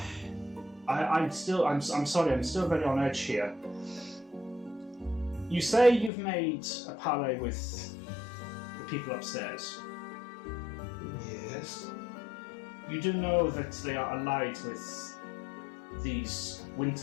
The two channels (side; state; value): right; drops out; at 6.1 s